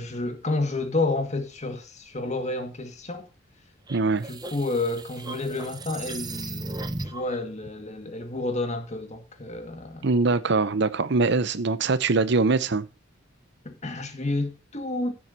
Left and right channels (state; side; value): normal; both; correlation 0.28